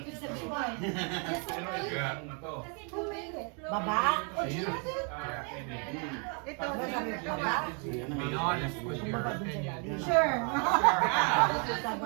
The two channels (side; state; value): left; quieter; 37.2 dB